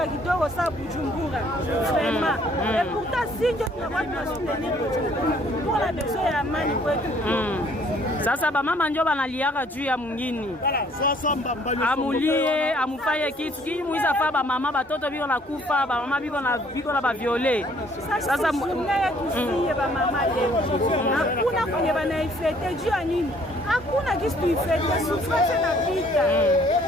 kidogo sa Bujumbura. Vraiment. Et pourtant si tunakuwa tunasoutenir Bujumbura. Tuko na besoin ya amani kwetu. Sasa ba mama ndio banaliaka juu ya mwingine. Amulie, amufaye kitu kii muiza fa ba mama batoto biko na kufa, ba mama biko na ba violer. Sasa mungaya tusiye ba mama leo. Hakuna kwenye banaifete juu ya nini? Hakuna kitu tuifete, souffrance na pita.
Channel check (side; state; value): both; normal; correlation 0.61